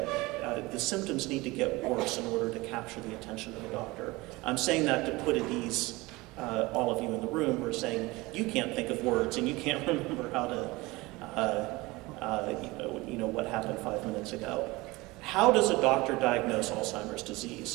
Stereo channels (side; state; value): left; quieter; 21.9 dB